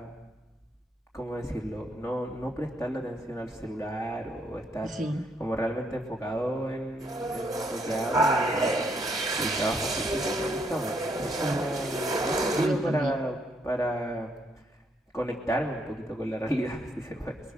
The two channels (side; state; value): both; normal; correlation 0.73